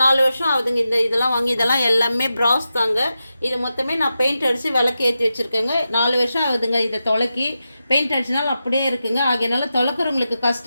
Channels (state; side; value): inverted; both; correlation -0.90